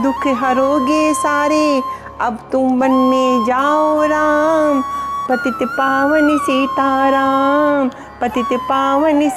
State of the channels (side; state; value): both; identical; correlation 1.00